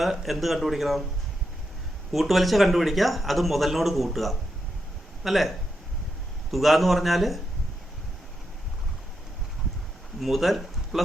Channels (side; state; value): both; normal; correlation 0.84